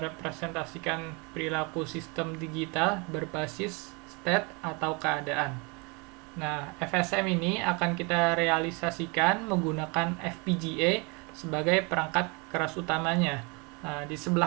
perilaku sistem digital berbasis state atau keadaan. Nah, FSM ini akan kita realisasikan menggunakan FPGA sebagai perangkat keras utamanya. Nah, di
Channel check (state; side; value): quieter; left; 30.1 dB